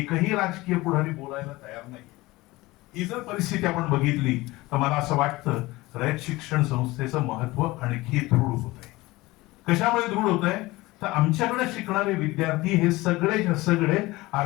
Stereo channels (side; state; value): right; quieter; 20.2 dB